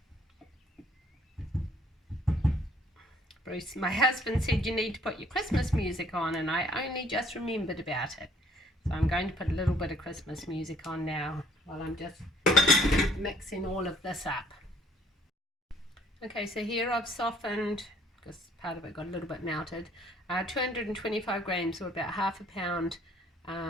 Bruce, my husband, said you need to put your Christmas music on, and I only just remembered about it. So I'm going to put a little bit of Christmas music on now while I'm just mixing all of this up. Okay, so here I've softened, because part of it got a little bit melted, 225 grams, or about half a pound,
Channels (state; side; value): normal; both; correlation 0.62